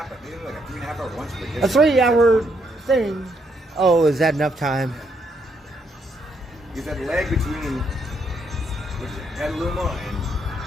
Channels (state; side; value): normal; both; correlation 0.75